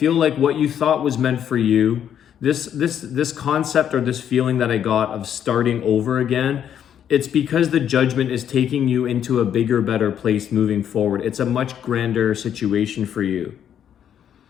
like what you thought was meant for you, this concept or this feeling that I got of starting over again, it's because the Judgment is taking you into a bigger, better place moving forward. It's a much grander situation for you.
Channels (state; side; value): quieter; right; 9.3 dB